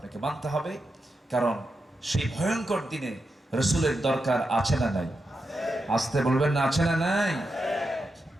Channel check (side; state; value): both; normal; correlation 0.87